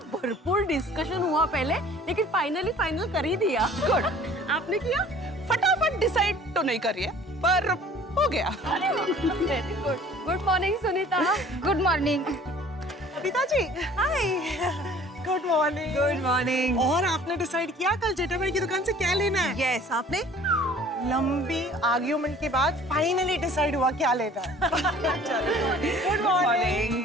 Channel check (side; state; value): both; normal; correlation 0.50